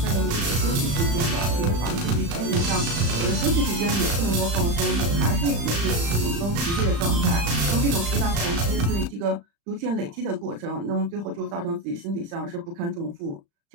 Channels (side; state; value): left; late; 35 ms